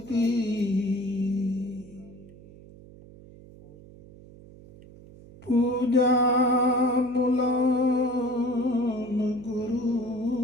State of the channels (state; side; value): noise; right; hum, 20 dB below the sound